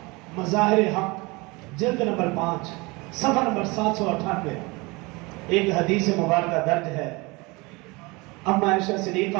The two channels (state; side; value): quieter; left; 25.1 dB